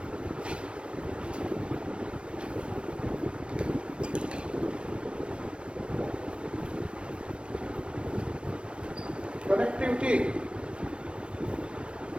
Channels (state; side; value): late; left; 0.058 ms